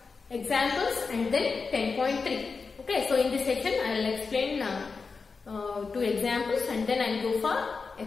examples and then 10.3. Okay. So, in this section, I will explain two examples and then I will go for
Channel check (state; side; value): quieter; right; 4.7 dB